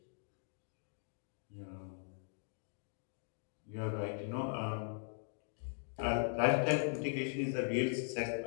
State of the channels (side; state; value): right; silent; digital silence